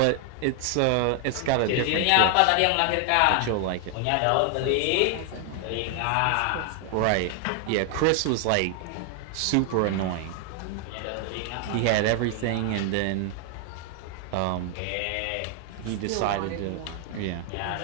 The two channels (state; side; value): different; both; correlation 0.00